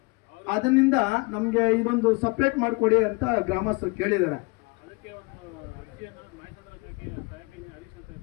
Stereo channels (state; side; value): quieter; right; 27.7 dB